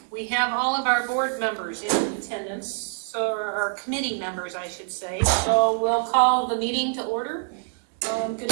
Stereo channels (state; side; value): silent; left; digital silence